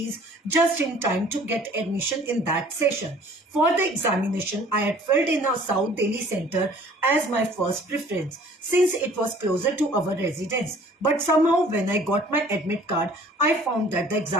just in time to get admission in that session. For the examination, I had filled in a South Delhi center as my first preference, since it was closer to our residence. But somehow when I got my admit card, I found that the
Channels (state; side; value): normal; both; correlation 0.53